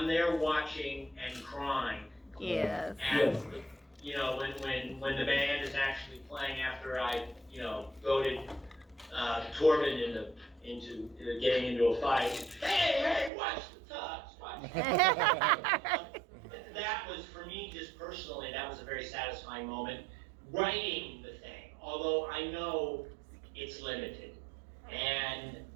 there watching and crying. Yes. And you know, when the band is actually playing after I goaded Torben into getting into a fight. Hey, watch the tux, watch. That was, for me, just personally, that was a very satisfying moment. Writing the thing, although I know it's limited, and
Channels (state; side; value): drops out; left; at 13.3 s